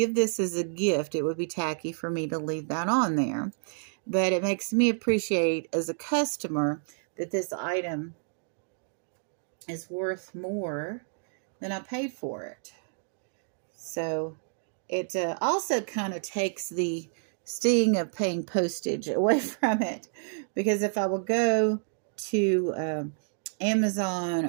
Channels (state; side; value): silent; left; digital silence